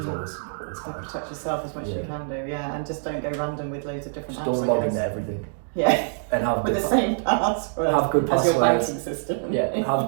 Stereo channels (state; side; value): silent; left; digital silence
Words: always hard. Protect yourself as much as you can do, and just don't go random with loads of different just apps. Don't log into everything. Yeah. And have with the same password. Have good passwords. As your banking system. Yeah.